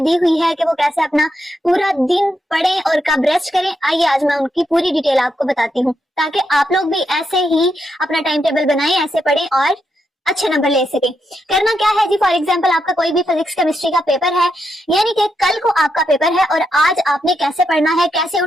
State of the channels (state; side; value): normal; both; correlation 0.82